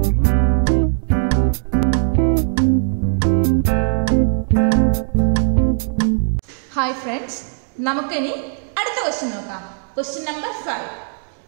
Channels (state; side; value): silent; left; digital silence